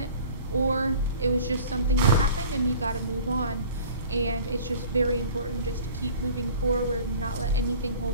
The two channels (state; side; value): inverted; both; correlation -0.45